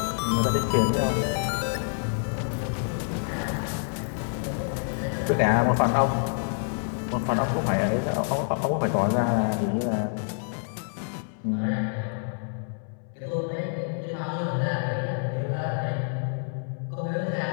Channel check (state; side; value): silent; right; 60 dB below the other